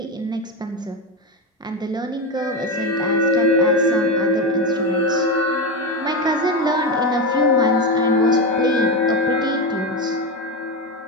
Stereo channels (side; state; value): both; normal; correlation 0.15